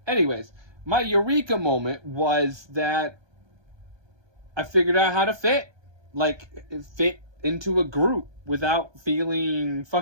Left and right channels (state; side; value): late; left; 1.2 ms